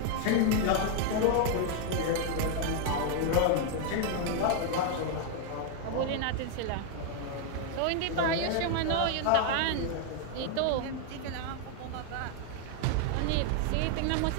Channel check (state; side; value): different; both; correlation 0.00